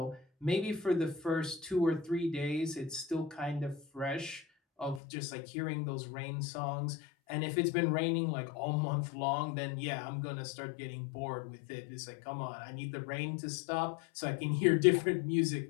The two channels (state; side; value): drops out; right; at 5.0 s